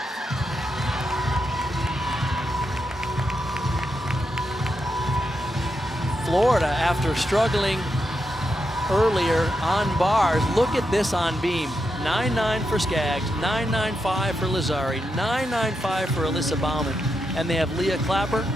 Florida, after struggling earlier on bars, look at this on beam. 9.9 for Skaggs, 9.95 for Lazari, 9.95 for Alyssa Bauman. And they have Leah Clapper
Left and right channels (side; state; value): both; normal; correlation 0.84